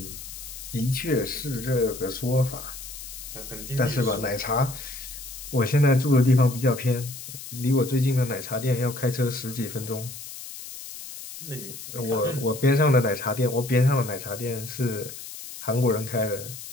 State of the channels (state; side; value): noise; left; hiss, 12 dB below the sound